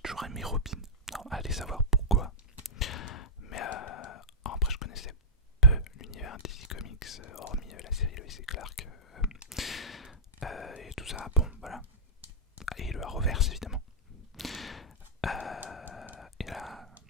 aimé Robin. Non, allez savoir pourquoi. Mais après je connaissais peu l'univers DC Comics, hormis la série Lois et Clark et tout ça. Bon voilà. Et le Arrowverse évidemment. Et là,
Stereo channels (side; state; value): both; normal; correlation -0.12